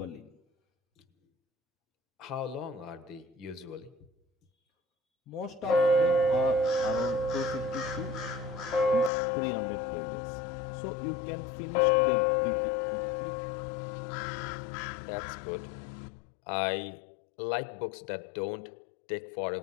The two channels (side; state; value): right; drops out; at 9.1 s